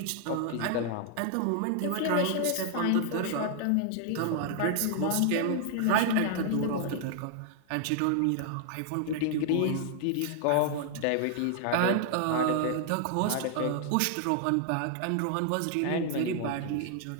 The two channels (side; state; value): both; different; correlation 0.00